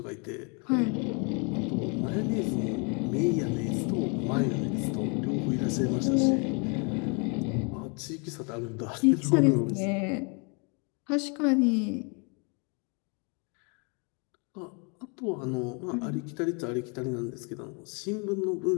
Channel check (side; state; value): right; quieter; 34.9 dB